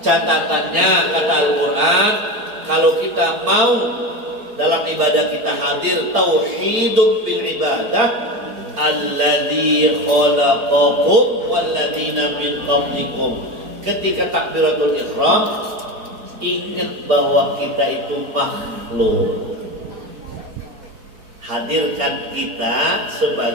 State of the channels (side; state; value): left; late; 4.3 ms